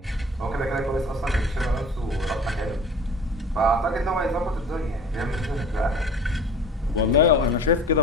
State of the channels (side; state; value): both; normal; correlation 0.43